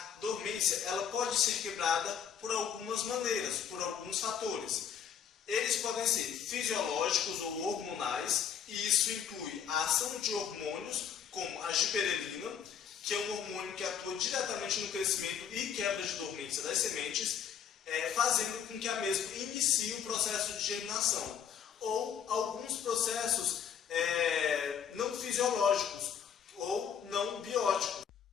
dormência ela pode ser quebrada por algumas maneiras, por alguns fatores. Eles podem ser fisiológicos ou hormonais, e isso inclui a ação de hormônios, como a giberelina, que é um hormônio que atua diretamente no crescimento e quebra de dormência das sementes, fazendo com que a mesma inicie o processo de germinação. Ou alguns processos não fisiológicos ou não bióticos,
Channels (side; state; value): right; quieter; 8.1 dB